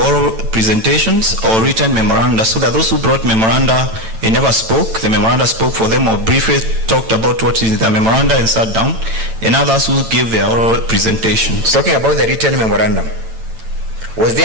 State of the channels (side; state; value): left; late; 9.0 ms